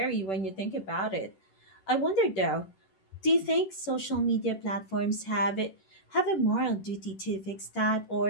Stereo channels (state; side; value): late; right; 10 ms